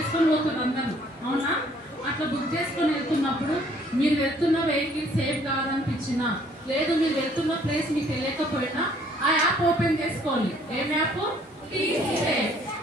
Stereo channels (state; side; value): normal; both; correlation 0.61